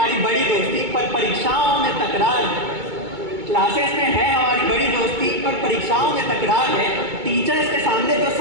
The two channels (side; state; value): left; late; 2.2 ms